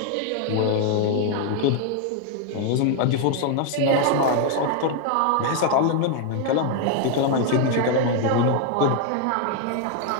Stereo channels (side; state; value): both; different; correlation 0.00